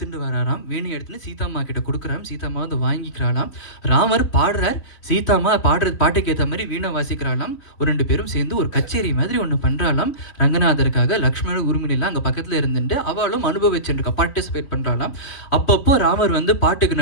வராராம். வீணை எடுத்துட்டு சீதாம்மா கிட்ட கொடுக்குறாம். சீதாம்மா வந்து வாங்கிக்கிறாளாம். ராமர் பாடுறார், சீதாம்மா பாட்டுக்கு ஏற்ற மாதிரி வீணை வாசிக்கிறாளாம். ஒரு 2 பேரும் சேர்ந்து ஒரு கச்சேரி மாதிரி ஒன்று பண்ணுறாளாம் ரங்கநாதருக்காக. லக்ஷ்மணர் உரிமையெல்லாம் அங்கே பக்கத்தில் இருந்துட்டு அவளும் அனுபவிச்சுருக்கா, பார்ட்டிசிபேட் பண்ணுறாளாம். அப்பப்போ ராமர் வந்து பாட்டுக்கு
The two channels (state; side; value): late; right; 3.7 ms